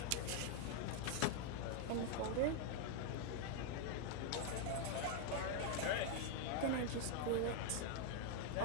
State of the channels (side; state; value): both; different; correlation 0.00